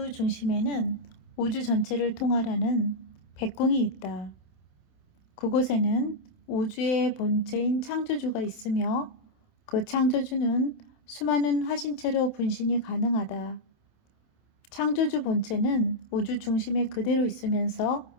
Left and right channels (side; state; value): right; late; 27 ms